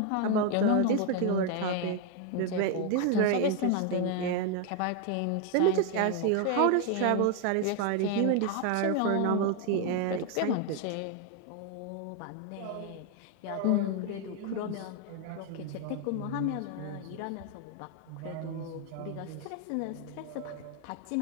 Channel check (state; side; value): different; both; correlation 0.01